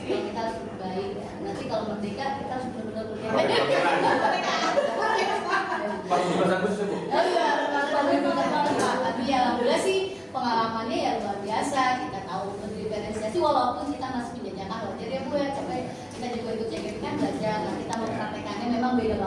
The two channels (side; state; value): both; identical; correlation 1.00